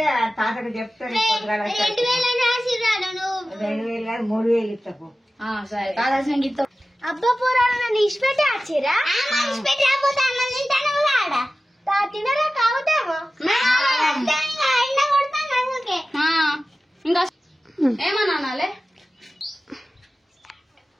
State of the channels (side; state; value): both; normal; correlation 0.95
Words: తాతకు చెప్తాను. 2000 3000 ఇస్తాకు. సరే తాత అబ్బా పోరాడు ఇష్టపెట్టి వచ్చిరా ఇష్టపెట్టి అన్నం తింటాను తినరా కావుతామో ఇంకా ఏమన్నాలే